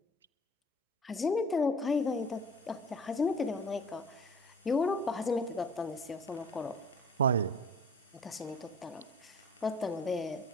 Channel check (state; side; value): normal; both; correlation 0.46